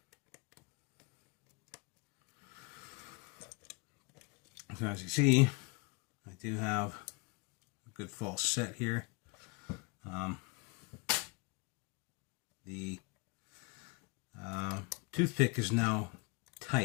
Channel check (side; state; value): right; quieter; 28.1 dB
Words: So as you see, I do have a good false set here. The toothpick is now